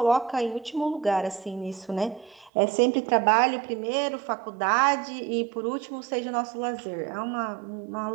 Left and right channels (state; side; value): drops out; left; at 2.5 s